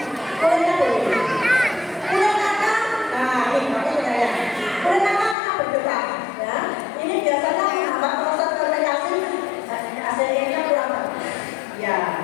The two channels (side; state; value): right; drops out; at 5.4 s